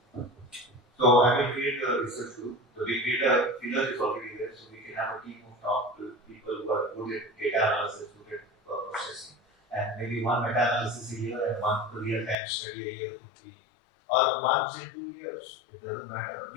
So I will create a research group. So we create a filler is already there, so we can have a team of top people who are good at data analysis, good at processing, and maybe one meta-analysis a year and one real-time study a year could be, or once in 2 years. It doesn't matter.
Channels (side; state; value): right; drops out; at 12.4 s